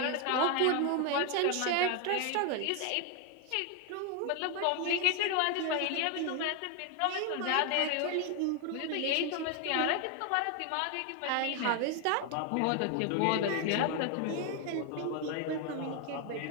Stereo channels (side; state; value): both; different; correlation 0.01